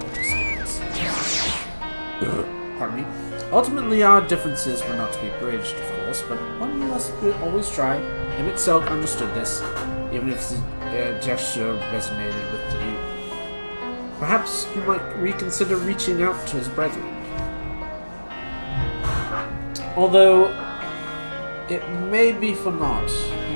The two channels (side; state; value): both; inverted; correlation -1.00